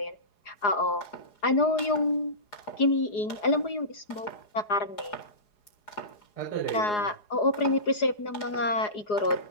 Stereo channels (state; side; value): late; right; 4.8 ms